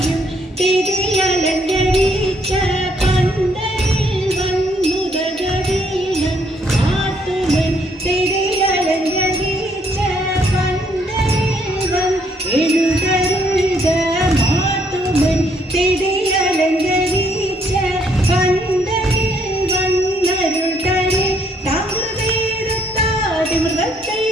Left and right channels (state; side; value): normal; both; correlation 0.69